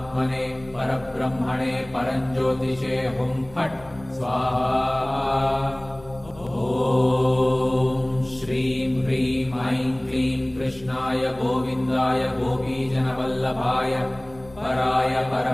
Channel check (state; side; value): noise; left; rumble, 22 dB below the sound